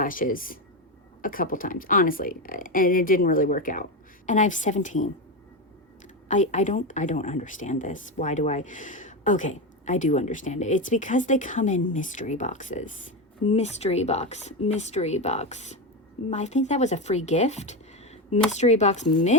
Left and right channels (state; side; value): normal; both; correlation 0.14